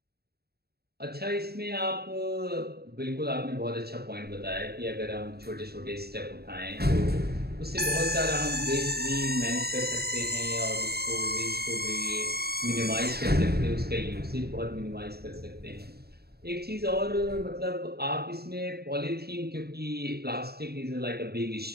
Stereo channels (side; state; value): left; late; 0.46 ms